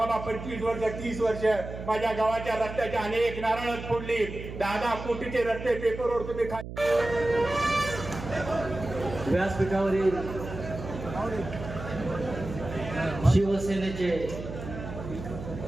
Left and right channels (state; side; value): noise; right; hum, 10 dB below the sound